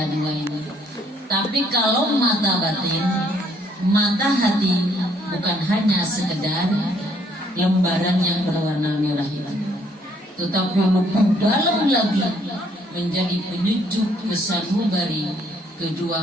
dua ini. Tapi kalau mata batin, mata hati bukan hanya sekedar lembaran yang berwarna merah itu, tetapi lebih dalam lagi menjadi penyejuk kesanubari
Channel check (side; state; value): both; normal; correlation 0.67